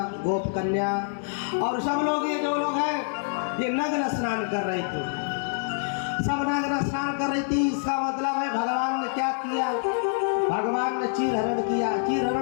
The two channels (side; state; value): right; silent; 61 dB below the other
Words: गोप कन्या, और सब लोग ये जो लोग हैं ये नग्न स्नान कर रहे थे, सब नग्न स्नान कर रही थी। इसका मतलब है भगवान ने क्या किया, भगवान ने चीर हरण किया। चीर